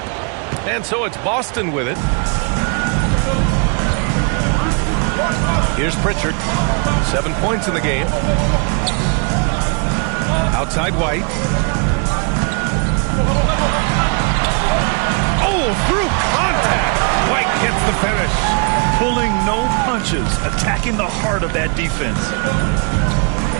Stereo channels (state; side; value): quieter; left; 37.1 dB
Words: And so it's Boston with it. Here's Pritchard. 7 points in the game. Outside White. Oh, through contact. White gets the finish. Pulling no punches, attacking the heart of that defense.